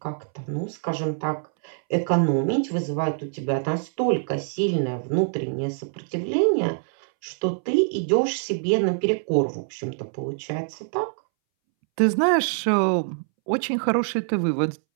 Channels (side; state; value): left; silent; 62 dB below the other